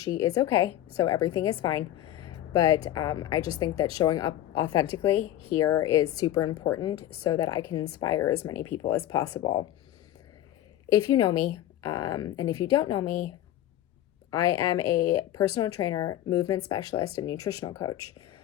is okay. So everything is fine. But I just think that showing up authentically here is super important so that I can inspire as many people as possible. If you know me, and if you don't know me, I am a personal trainer, movement specialist, and nutritional coach.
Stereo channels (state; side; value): quieter; right; 13.0 dB